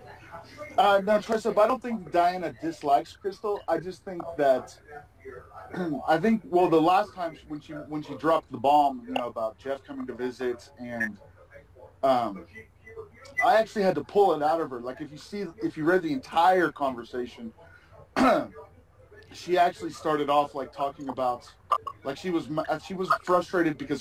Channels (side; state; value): both; identical; correlation 1.00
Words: No, Tricep, I don't think Diana dislikes Krystal. I just think that the last time when she dropped the bomb, about Jeff coming to visit, and I actually had to pull it out of her. Like, if you read the entire conversation, she actually started off talking about, she was frustrated